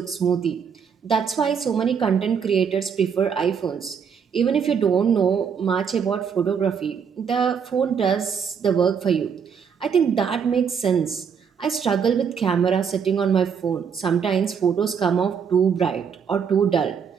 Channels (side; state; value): left; quieter; 6.8 dB